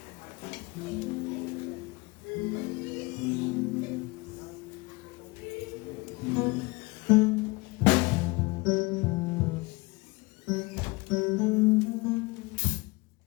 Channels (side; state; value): right; quieter; 24.5 dB